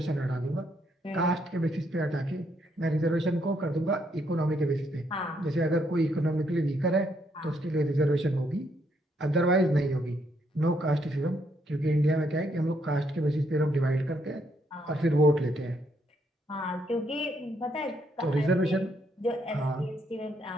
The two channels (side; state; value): both; normal; correlation 0.73